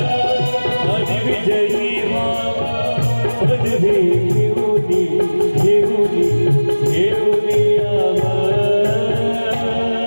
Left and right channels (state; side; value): inverted; both; correlation -1.00